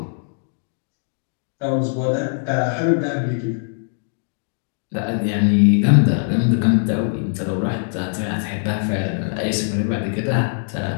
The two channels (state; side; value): silent; right; 65 dB below the other